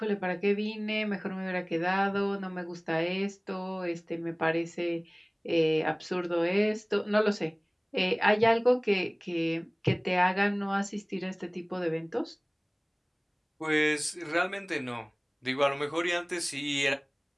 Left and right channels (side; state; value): both; identical; correlation 1.00